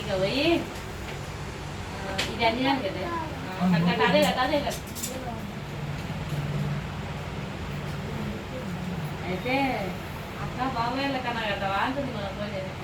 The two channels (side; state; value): both; identical; correlation 1.00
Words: పోయి ఇది అన్ని కదా అదే కదా అదే కదా. అయితే అక్క బాబాయ్ల కన్నా కదవా అంటుంది మన పోయి.